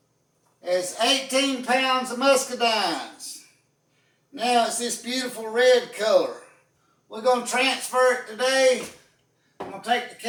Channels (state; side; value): identical; both; correlation 1.00